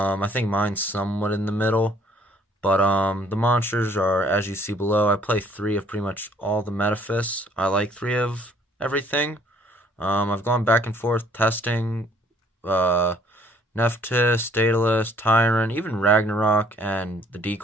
think mine's somewhat in the middle, but the monsters are as you see below. I play 3 of pretty much all the Metaphys. I like 3 of everything. I've gone back and forth testing uh, Nephthys, Daedalus, Tyrant, even Ragnarok, and the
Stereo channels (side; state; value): both; normal; correlation 0.61